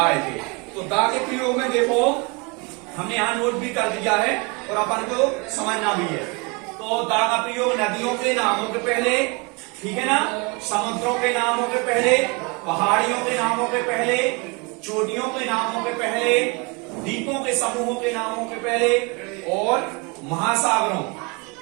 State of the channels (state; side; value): quieter; left; 29.8 dB